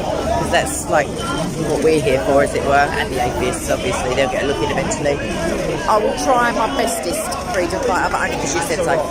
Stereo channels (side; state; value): both; identical; correlation 1.00